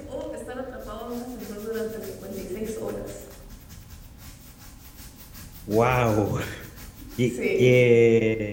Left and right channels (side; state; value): both; identical; correlation 1.00